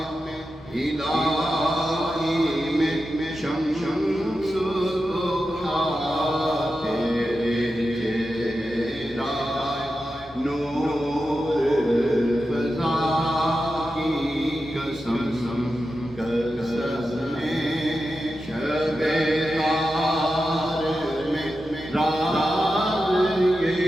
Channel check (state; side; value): normal; both; correlation 0.91